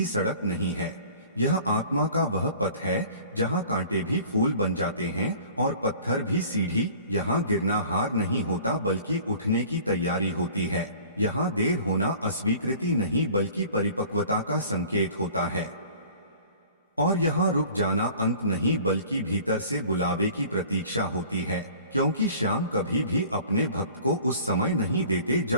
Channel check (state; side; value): inverted; both; correlation -0.47